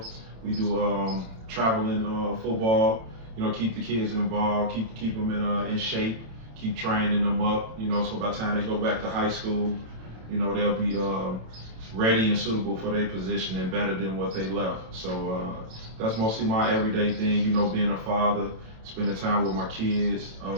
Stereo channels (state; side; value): late; left; 27 ms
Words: We do traveling football. Keep the kids involved, keep them in shape, keep training them up. So by the time they go back to high school, they'll be ready and suitable for their position and better than what they left. So that's mostly my everyday thing. Being a father, spending time with my kids.